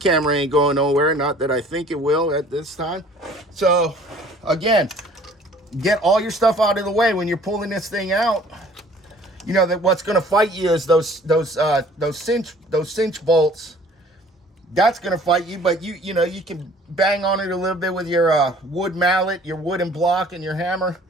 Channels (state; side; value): normal; both; correlation 0.52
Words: ain't going nowhere. Not that I think it will at this time. So, again, get all your stuff out of the way when you're pulling this thing out. You know that what's going to fight you is those cinch bolts. That's going to fight you, but you know you can bang on it a little bit with your wood mallet, your wooden block, and your hammer,